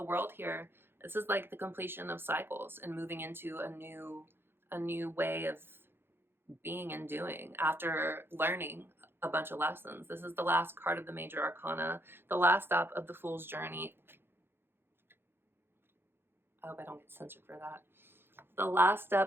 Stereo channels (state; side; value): late; left; 0.11 ms